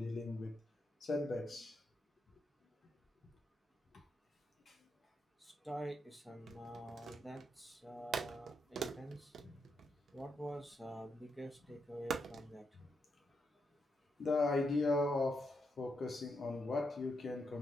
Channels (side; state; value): both; normal; correlation 0.81